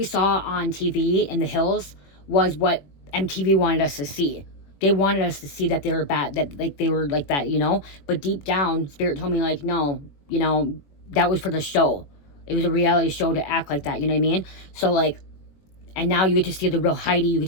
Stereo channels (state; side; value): late; right; 21 ms